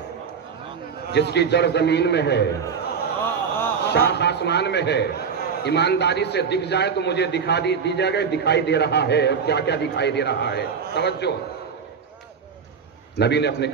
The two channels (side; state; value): left; quieter; 6.2 dB